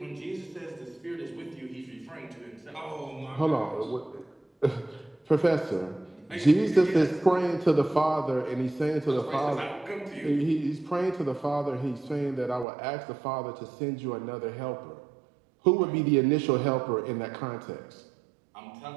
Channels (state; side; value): drops out; left; at 12.7 s